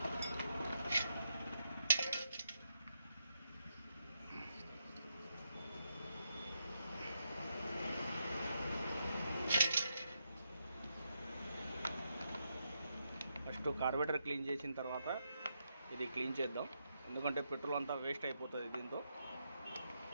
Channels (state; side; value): inverted; both; correlation -0.82